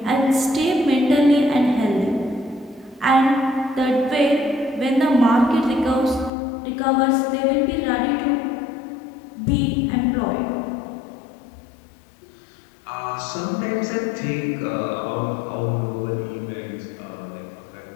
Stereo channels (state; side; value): drops out; right; at 6.3 s